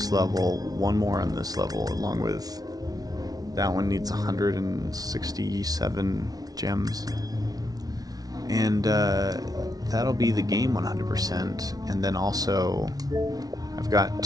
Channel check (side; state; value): left; late; 0.18 ms